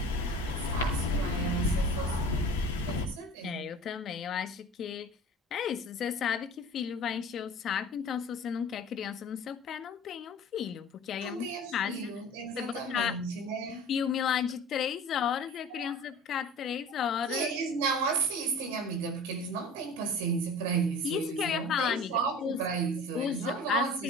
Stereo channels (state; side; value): normal; both; correlation 0.41